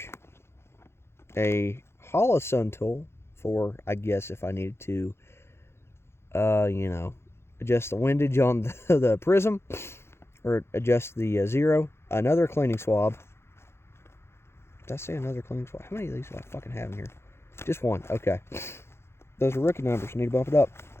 a Holosun tool for, I guess, if I needed to, adjust the windage on the prism, or adjust the zero, another cleaning swab. Did I say another cleaning swab? How many of these do I fucking have in here? Just one. Okay. Those are rookie numbers. Need to bump it up.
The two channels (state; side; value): late; right; 0.12 ms